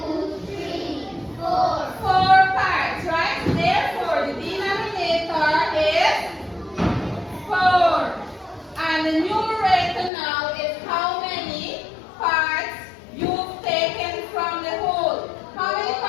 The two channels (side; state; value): right; drops out; at 10.1 s